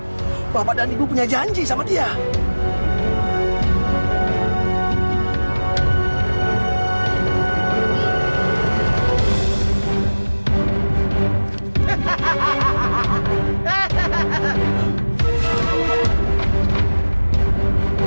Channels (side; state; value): both; inverted; correlation -1.00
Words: Bapak dan Ibu punya janji sama dia.